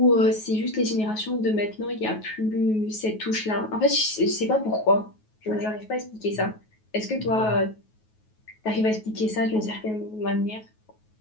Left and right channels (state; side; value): late; right; 9.3 ms